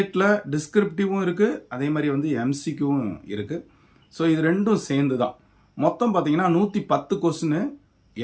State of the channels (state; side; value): identical; both; correlation 1.00